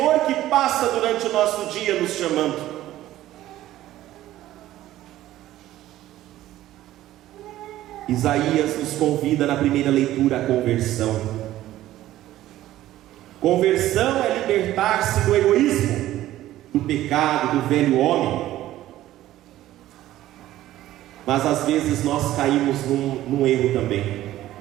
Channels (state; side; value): quieter; left; 14.3 dB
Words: que passa durante o nosso dia nos chamando. Isaías nos convida na primeira leitura à conversão. Conversão é libertar-se do egoísmo, do pecado, do velho homem. Mas às vezes nós caímos num erro também.